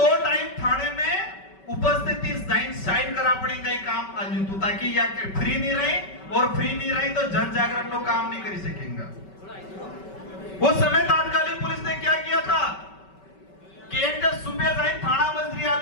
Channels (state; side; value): late; right; 5.2 ms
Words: टाइम थाने में उपस्थिति साइन करा पड़ी कई काम अंजुतु, ताकि या फ्री नहीं रही, और फ्री नहीं रही तो जन जागरण लोग काम नहीं कर सकेंगे। उस समय तात्कालिक पुलिस ने क्या किया था कि एक सुबह जाए थाना मजरी